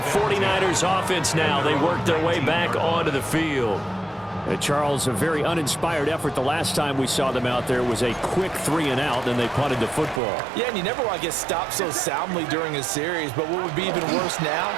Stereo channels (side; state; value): left; drops out; at 10.2 s